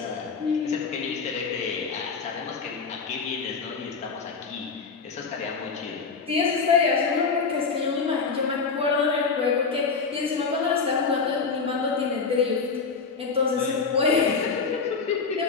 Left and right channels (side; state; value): right; quieter; 5.0 dB